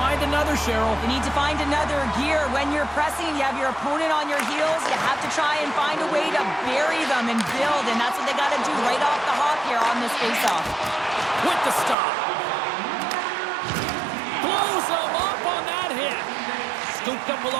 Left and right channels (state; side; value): drops out; left; at 12.0 s